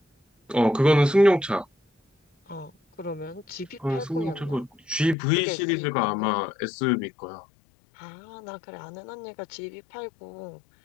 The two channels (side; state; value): right; drops out; at 5.2 s